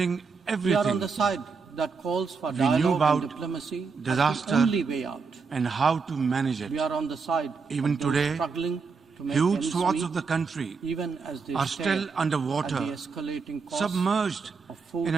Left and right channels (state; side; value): quieter; left; 5.0 dB